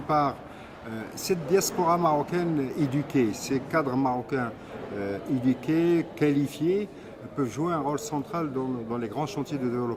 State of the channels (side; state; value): both; identical; correlation 1.00